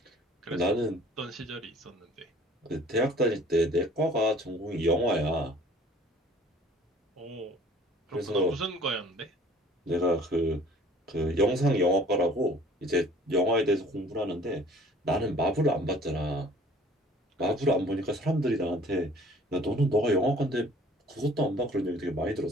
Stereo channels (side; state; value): both; normal; correlation 0.52